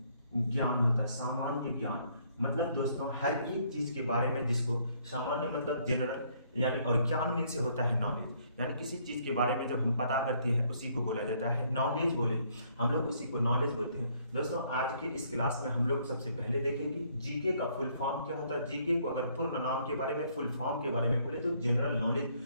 ज्ञान होता है, सामान्य ज्ञान, मतलब दोस्तों हर एक चीज के बारे में, जिसको सामान्य मतलब जनरल यानी, और ज्ञान मीन से होता है नॉलेज, यानी किसी चीज के बारे में जब हम पता करते हैं उसी को बोला जाता है नॉलेज। बोले हम लोग उसी को नॉलेज बोलते हैं दोस्तों। आज के इस क्लास में हम लोग सबसे पहले देखेंगे जीके का फुल फॉर्म क्या होता है। जीके को अगर पूर्ण नाम के बारे में, फुल फॉर्म के बारे में बोले तो जनरल नॉलेज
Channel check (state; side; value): inverted; both; correlation -0.66